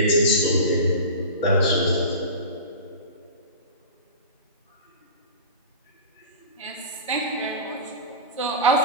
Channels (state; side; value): inverted; both; correlation -0.31